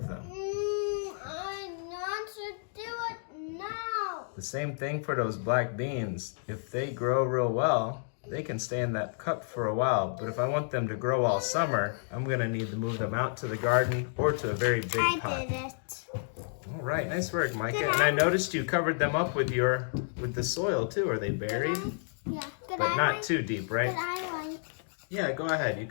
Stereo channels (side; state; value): right; silent; digital silence